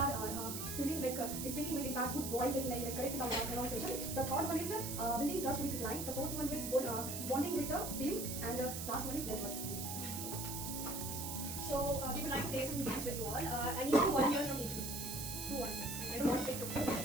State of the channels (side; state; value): right; noise; hiss, 5 dB below the sound